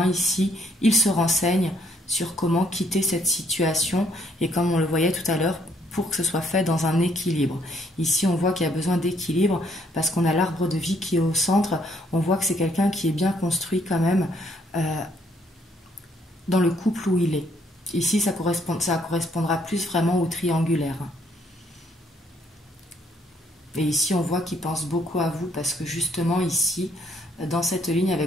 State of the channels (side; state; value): both; normal; correlation 0.68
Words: ici, il se renseigne sur comment quitter cette situation. Et comme on le voyait tout à l'heure, pour que ce soit fait dans un équilibre. Ici, on voit qu'il y a besoin d'équilibre parce qu'on a l'arbre de vie qui est au centre. On voit que c'est quelqu'un qui est bien construit quand même dans le couple où il est. Ici, ça correspondra plus vraiment au triangulaire. Et ici, on voit qu'il pense beaucoup à vous parce que justement ici, dans cette ligne